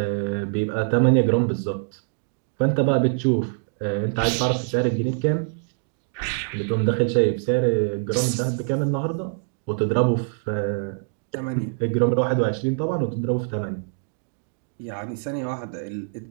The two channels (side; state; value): left; silent; digital silence